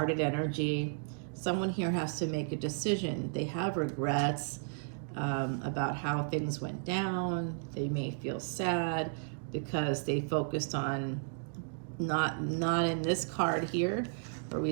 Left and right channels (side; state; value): left; silent; digital silence